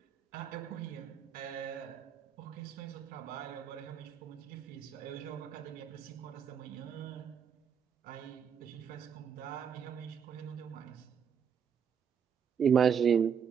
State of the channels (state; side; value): quieter; left; 7.4 dB